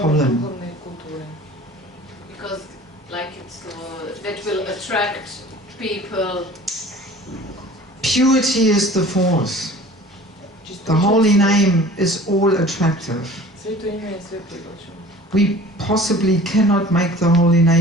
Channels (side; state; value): both; normal; correlation 0.45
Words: Because, like, it's that will attract people. Purity is the force. The holy name is all attractive. We possibly cannot make the holy